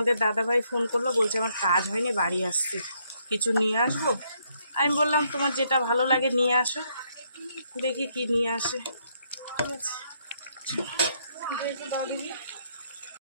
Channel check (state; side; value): inverted; both; correlation -0.73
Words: দাদাভাই ফোন করলো, বলছে আমার কাজ হয়নি, বাড়ি আসছি, কিছু নিয়ে আসবো। আমি বললাম তোমার যেটা ভালো লাগে নিয়ে আসো, দেখি কি নিয়ে আসে, ঠিক আছে।